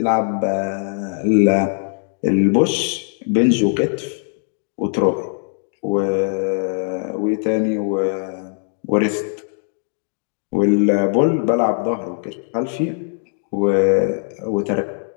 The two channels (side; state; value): right; silent; 63 dB below the other